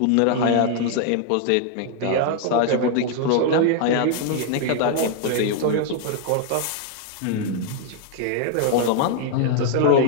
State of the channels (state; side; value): different; both; correlation 0.00